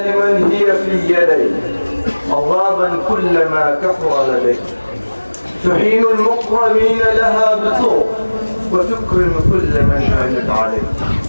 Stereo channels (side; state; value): both; inverted; correlation -1.00